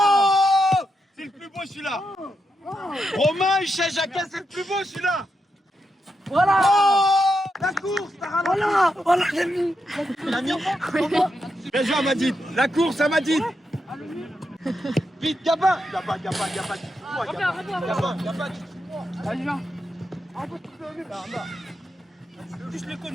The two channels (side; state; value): both; normal; correlation 0.85